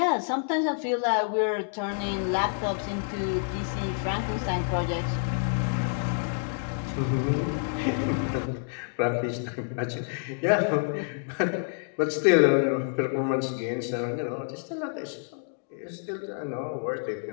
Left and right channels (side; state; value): right; silent; digital silence